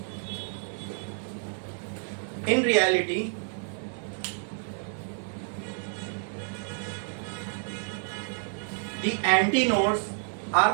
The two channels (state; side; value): silent; left; 58 dB below the other